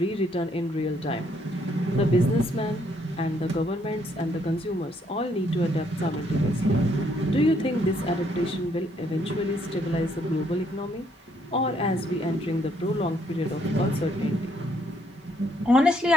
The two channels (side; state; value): both; normal; correlation 0.70